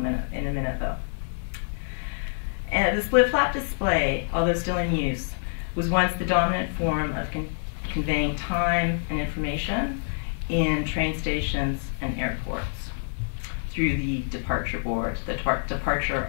minute though. And the split flap display, although still in use, was once the dominant form of conveying time and information in train stations and airports through the departure board, the departure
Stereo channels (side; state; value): right; silent; 60 dB below the other